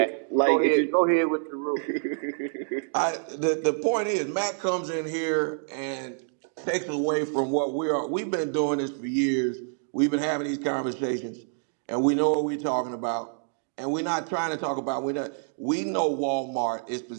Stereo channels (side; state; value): left; silent; digital silence